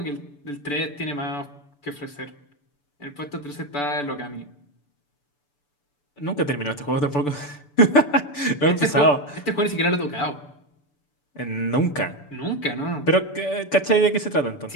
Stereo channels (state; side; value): late; right; 6.9 ms